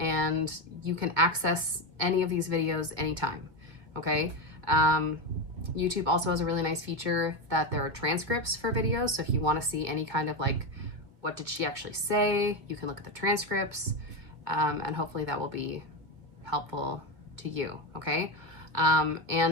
you can access any of these videos anytime. Okay. YouTube also has a really nice feature that there are transcripts for videos. So if you want to see any kind of like, what did she actually say, you can look at the transcripts, and hopefully that will be helpful to you, okay?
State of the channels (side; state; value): left; late; 2.0 ms